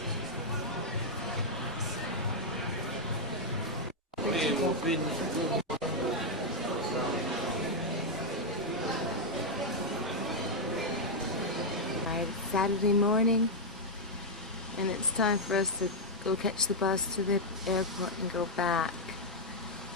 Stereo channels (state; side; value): normal; both; correlation -0.03